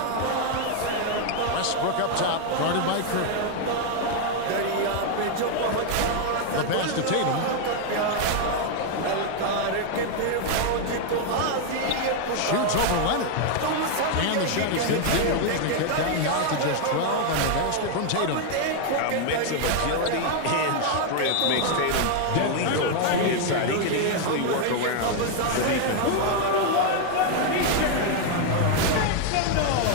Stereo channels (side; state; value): both; different; correlation 0.00